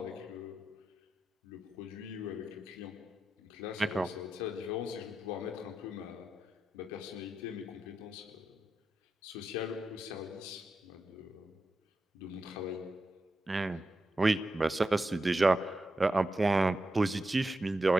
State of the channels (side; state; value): both; normal; correlation 0.88